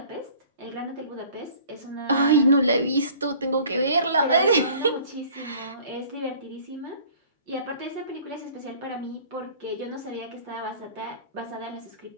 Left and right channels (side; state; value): both; inverted; correlation -0.50